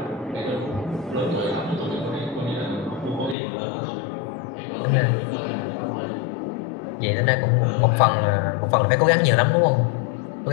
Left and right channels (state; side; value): drops out; right; at 3.4 s